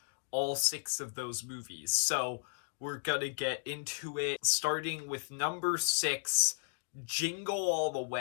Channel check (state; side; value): silent; right; digital silence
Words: all 6 of those movies. So we're gonna get into it, starting with number 6, Jingle All the